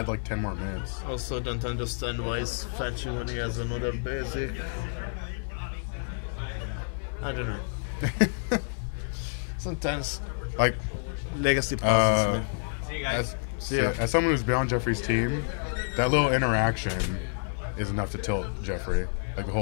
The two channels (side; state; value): right; silent; digital silence